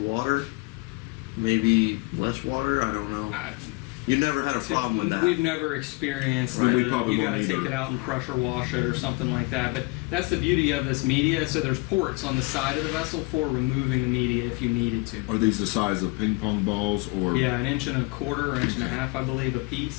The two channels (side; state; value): right; quieter; 26.6 dB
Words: Maybe less water. I don't know. You never had a problem with that. We've never experienced we probably you got to won't take either. it out and pressure wash it or something like that. But that's the beauty of this media. So there's ports on the side of the vessel for removing the media if you needed to. Are these the size of ping pong balls, or? Yeah, 1.25 inches or 1.5 inches, I believe, a